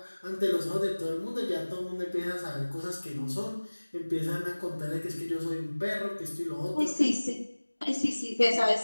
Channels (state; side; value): inverted; both; correlation -1.00